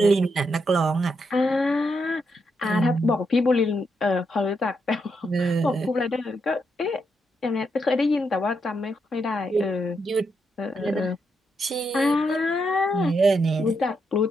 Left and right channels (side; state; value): both; normal; correlation 0.81